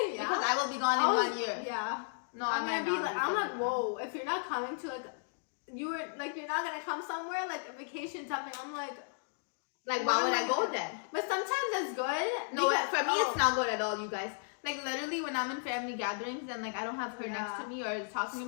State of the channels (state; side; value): silent; right; digital silence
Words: yeah. because I will be gone in 1 year. Yeah. No, I'm I might gonna be not like, I'm like, whoa, if you're not coming to, like, you're not gonna come somewhere, like, a vacation, something, I'm like, Like, what why would am I go gonna- then? But sometimes that's good. No, because- for me, it's oh. not good at all, you guys. Like, literally, when I'm in family gatherings and, like, I don't have her Yeah. next to me or talking to